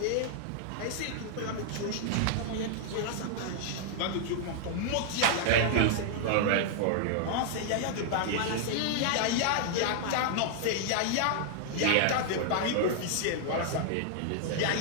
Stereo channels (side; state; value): both; different; correlation -0.01